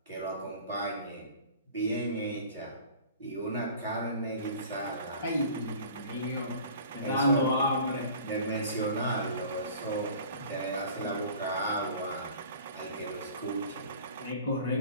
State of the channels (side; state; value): both; inverted; correlation -0.44